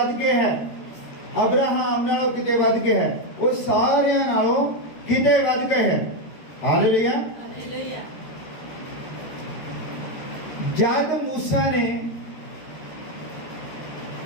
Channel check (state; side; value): late; right; 13 ms